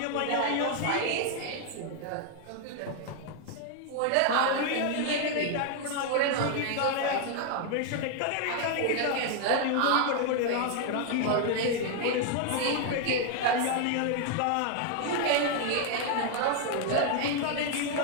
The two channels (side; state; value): both; different; correlation 0.00